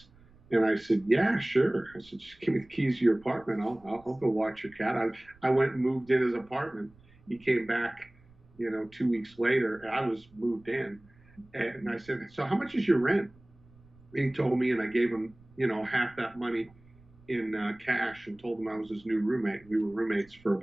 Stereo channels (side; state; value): right; noise; rumble, 27 dB below the sound